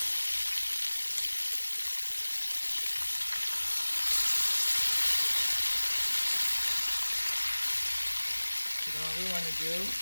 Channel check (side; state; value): both; inverted; correlation -1.00